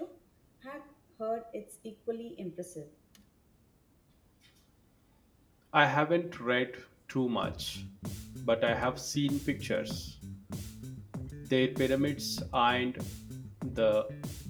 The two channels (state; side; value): identical; both; correlation 1.00